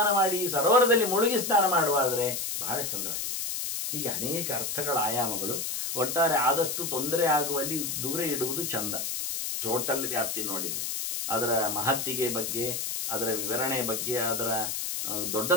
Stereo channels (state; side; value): noise; left; hiss, 3 dB below the sound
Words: ಮಾಡಿ, ಸರೋವರದಲ್ಲಿ ಮುಳುಗಿ ಸ್ನಾನ ಮಾಡುವಾದ್ರೆ ಬಹಳ ಚಂದವಾಗಿದೆ. ಹೀಗೆ ಅನೇಕ ಅರ್ಥಗಳ ಆಯಾಮಗಳು. ಒಟ್ಟಾರೆ ಆದಷ್ಟು ತೊಂದರೆ ಆಗುವಲ್ಲಿ ದೂರ ಇಡುವುದು ಚಂದ. ಟೋಟಲ್ ವ್ಯಾಪ್ತಿ ನೋಡಿದ್ರೆ ಅದರ ಮಹತ್ತಿಗೆ ಬಗ್ಗೆ, ಅದರ ವಿವರಣೆ ಬಗ್ಗೆ, ಅದರ